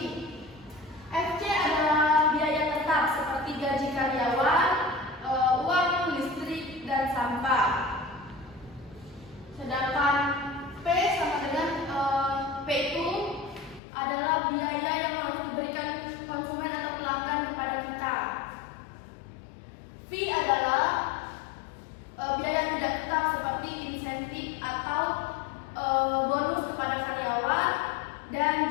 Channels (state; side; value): drops out; right; at 13.8 s